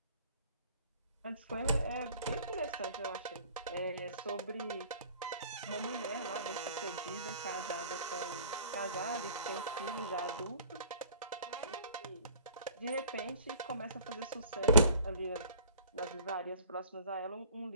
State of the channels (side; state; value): both; inverted; correlation -0.50